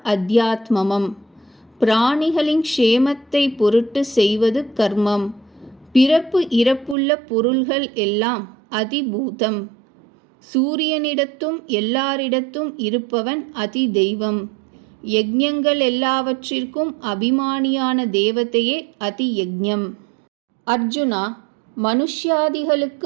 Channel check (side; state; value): left; drops out; at 7.0 s